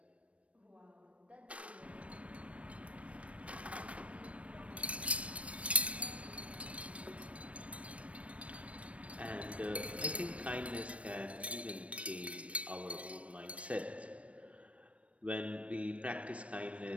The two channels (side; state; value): left; late; 0.063 ms